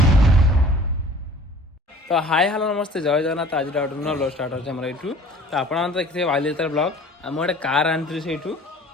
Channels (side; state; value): both; normal; correlation 0.48